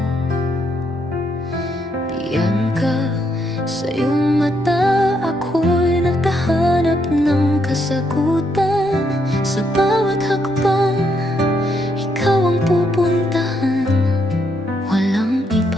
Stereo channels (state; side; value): normal; both; correlation 0.76